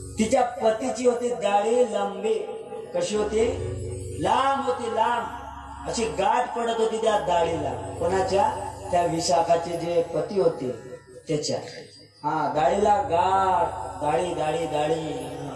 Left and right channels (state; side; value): identical; both; correlation 1.00